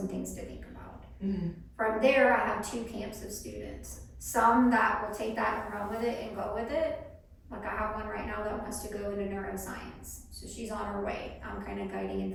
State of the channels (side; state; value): both; identical; correlation 1.00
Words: things to think about. From there, I have two camps of students. Some that will take that and run with it and go with it. Like I have one right now that wants to go into neuroscience. So she's on her way. I'm kind of guiding